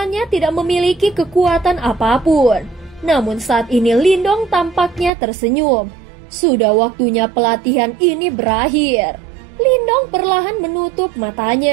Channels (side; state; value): left; drops out; at 5.1 s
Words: tidak memiliki kekuatan apapun. Namun saat ini Lindong tampaknya tersenyum. Sudah waktunya pelatihan ini berakhir. Lindong perlahan menutup